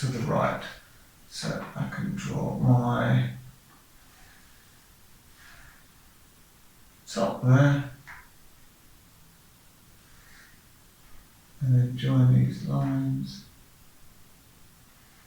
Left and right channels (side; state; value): both; identical; correlation 1.00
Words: the right. So I can draw my top there. And then join these lines.